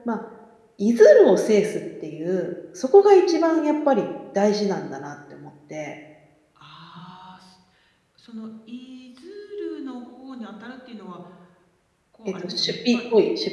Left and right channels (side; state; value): both; identical; correlation 1.00